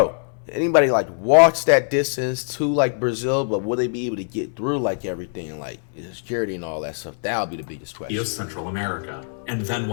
anybody like walks that distance to like Brazil, but will they be able to get through like everything, like security and all that stuff? That'll be the biggest question. Of Central America, and then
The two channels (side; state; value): right; silent; digital silence